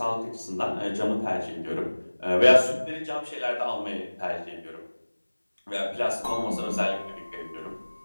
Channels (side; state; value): both; inverted; correlation -1.00